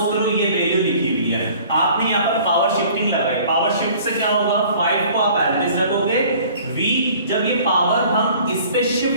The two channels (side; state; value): both; inverted; correlation -0.51